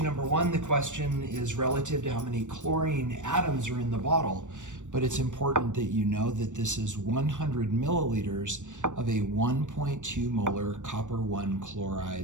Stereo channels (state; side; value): late; left; 0.85 ms